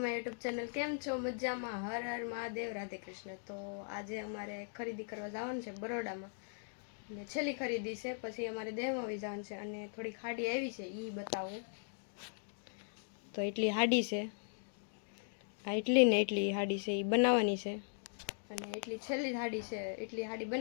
my YouTube channel. કેમ છો? મજામાં? હર હર મહાદેવ, રાધે કૃષ્ણ. તો આજે અમારે ખરીદી કરવા જવાનું છે બરોડામાં, અને છેલ્લી ખરીદી છે. પછી અમારે દેહમાં આવી જવાનું છે, અને થોડીક હાડી આવી છે એ બતાવું. તો એટલી હાડી છે, આ એટલી ને એટલી હાડી છે એ બનાવવાની છે, અને એટલી છેલ્લી હાડી છે. એટલી હાડી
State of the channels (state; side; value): silent; right; digital silence